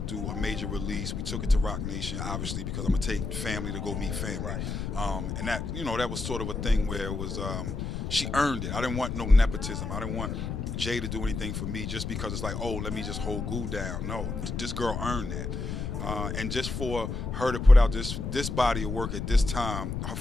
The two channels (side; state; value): left; noise; rumble, 4 dB below the sound